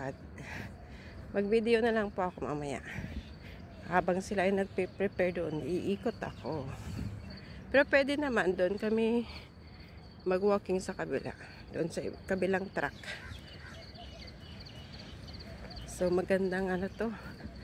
Mag-video na lang po ako mamaya. Habang sila ay nagpe-prepare doon, iikot ako. Pero pwede naman doon kami mag-walking sa kabila. Doon sa kabilang track. So magandang ano to.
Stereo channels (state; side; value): identical; both; correlation 1.00